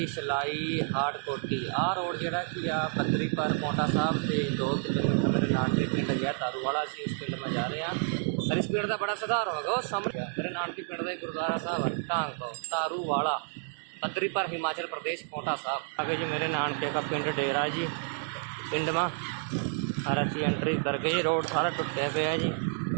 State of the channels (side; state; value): left; silent; 58 dB below the other